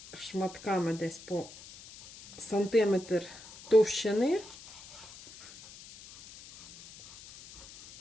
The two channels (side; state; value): left; noise; hiss, 18 dB below the sound